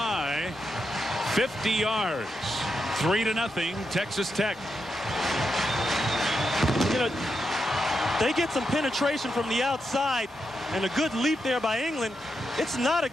50 yards, 3-0, Texas Tech. You know, they get some penetration from the outside and a good leap there by England. It's not a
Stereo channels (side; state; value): both; normal; correlation 0.85